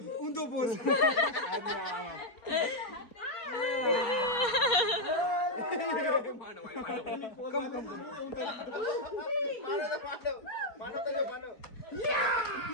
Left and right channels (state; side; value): late; right; 4.2 ms